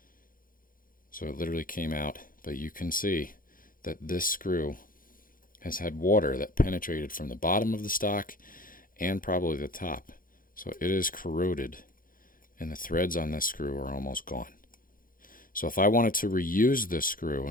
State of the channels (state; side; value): late; right; 0.40 ms